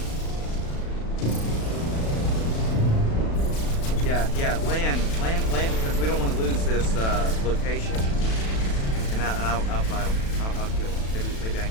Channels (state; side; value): late; right; 36 ms